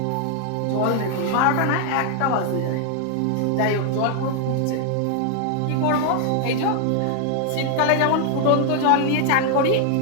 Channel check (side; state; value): both; different; correlation 0.00